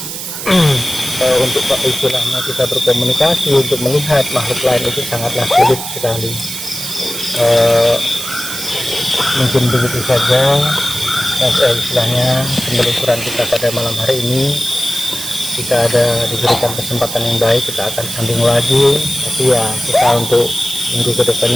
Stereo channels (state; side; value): noise; right; hiss, 7 dB below the sound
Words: untuk istilahnya kita berkomunikasi, untuk melihat makhluk lain itu sangatlah sulit sekali. Mungkin begitu saja istilahnya penelusuran kita pada malam hari ini. Jika ada diberikan kesempatan yang baik, kita akan sambung lagi. Tapi ya, kita untuk minggu